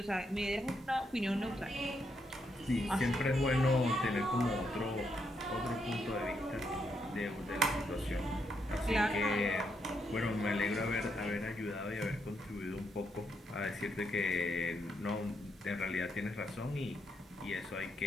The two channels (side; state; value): both; normal; correlation 0.79